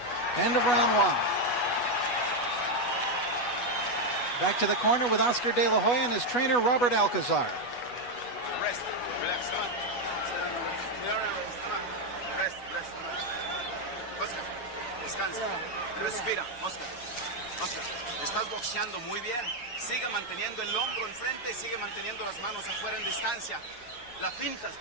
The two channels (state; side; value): late; right; 8.2 ms